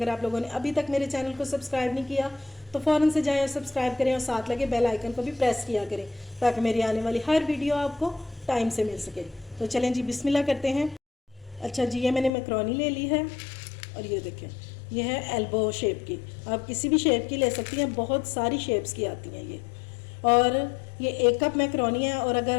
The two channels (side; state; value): right; drops out; at 12.3 s